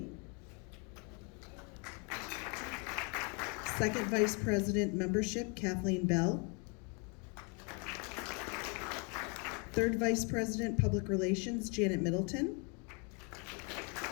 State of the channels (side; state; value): right; quieter; 34.1 dB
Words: Second Vice President Membership, Kathleen Bell. Third Vice President Public Relations, Janet Middleton.